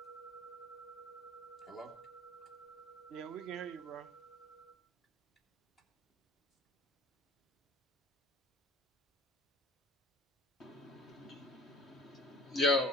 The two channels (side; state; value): both; normal; correlation 0.45